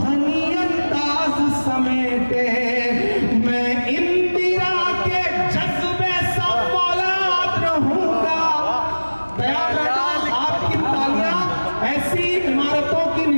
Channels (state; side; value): inverted; both; correlation -1.00